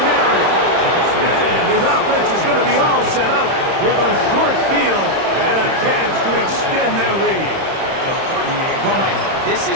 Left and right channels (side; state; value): left; late; 31 ms